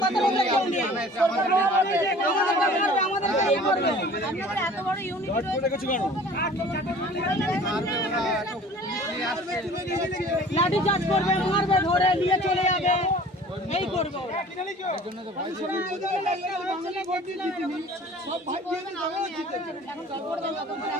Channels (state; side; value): normal; both; correlation 0.47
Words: বাতারে কেউ নেই আমাদের এই করবে আমাদের এত বড় ইউনিট রয়েছে কেন লাঠি চার্জ করবে মারবে ধরে নিয়ে চলে যাবে এই করব এর জন্য তো ভাই সব ভাই দিয়ে যাবে জিতেছে এখন